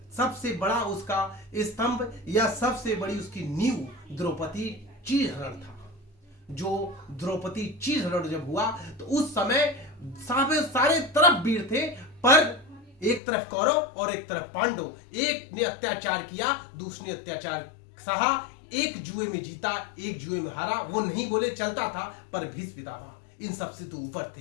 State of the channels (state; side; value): drops out; right; at 13.2 s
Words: बड़ा उसका स्तंभ या सबसे बड़ी उसकी नींव द्रौपदी चीरहरण था। जो द्रौपदी चीरहरण जब हुआ तो उस समय सारे तरफ वीर थे, पर एक तरफ कौरव और एक तरफ पांडव। एक ने अत्याचार किया, दूसरे ने अत्याचार सहा, एक जुए में जीता, एक जुए में हारा। वो नहीं बोले चलता था, पर भीष्म पितामह इन सबसे तो ऊपर